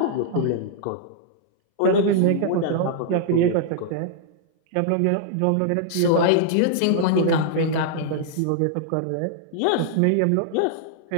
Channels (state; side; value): different; both; correlation -0.01